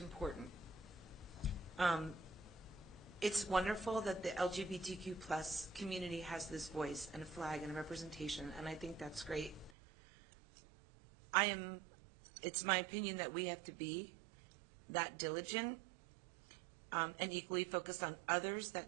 important. It's wonderful that the LGBTQ plus community has this voice and a flag and a representation, and I think that's great. It's my opinion that we have to be that diligent and equally focused on others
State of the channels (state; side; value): drops out; left; at 9.8 s